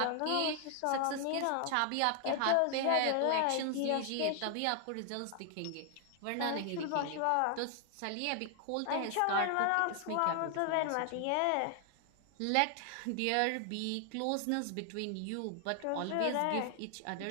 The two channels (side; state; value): both; different; correlation 0.00